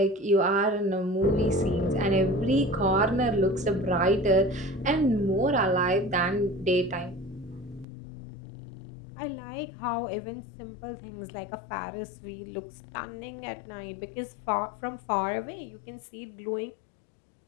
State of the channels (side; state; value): right; drops out; at 7.9 s